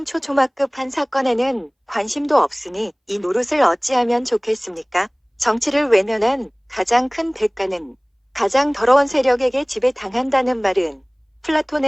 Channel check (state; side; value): identical; both; correlation 1.00